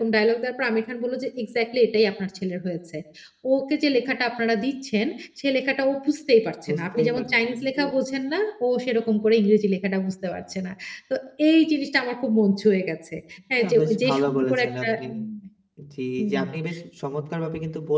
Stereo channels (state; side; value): identical; both; correlation 1.00